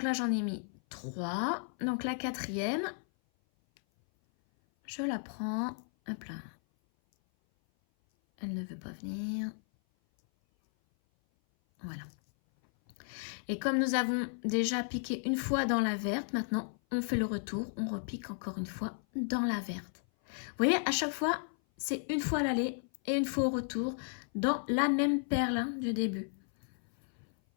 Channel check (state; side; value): silent; right; 55 dB below the other